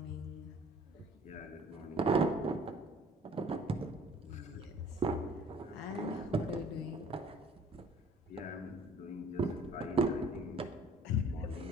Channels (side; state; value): both; normal; correlation 0.53